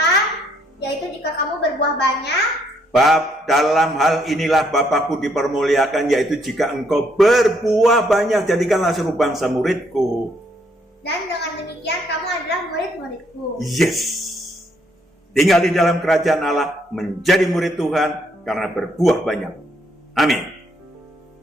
yaitu jika kamu berbuah banyak. Dalam hal inilah Bapakku dipermuliakan, yaitu jika engkau berbuah banyak, jadikanlah seluruh bangsa muridku. Dan dengan demikian kamu adalah murid-muridku. Yes. Tinggal di dalam kerajaan Allah, menjadi murid Tuhan karena berbuah banyak. Amin.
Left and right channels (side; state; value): both; normal; correlation 0.71